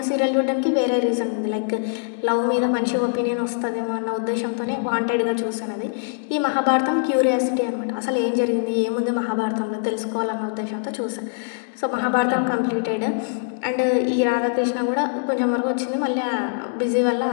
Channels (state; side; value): silent; right; digital silence